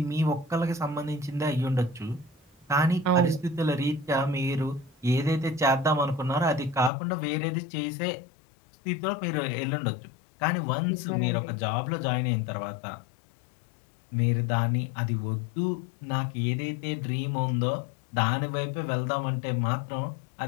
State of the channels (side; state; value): right; drops out; at 6.9 s